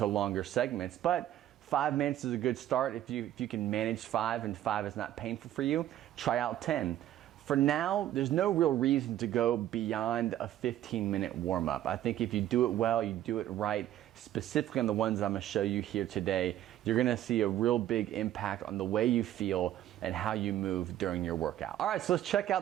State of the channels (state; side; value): quieter; left; 12.6 dB